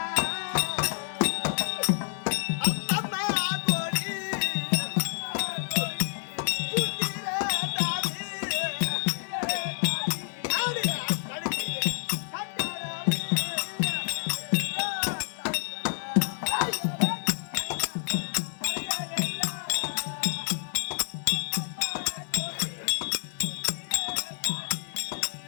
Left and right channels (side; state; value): right; silent; digital silence